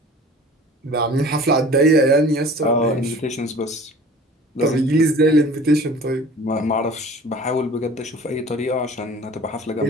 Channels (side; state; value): both; normal; correlation 0.45